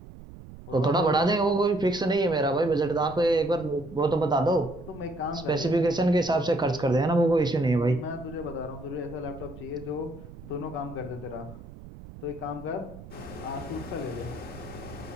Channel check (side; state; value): right; noise; rumble, 16 dB below the sound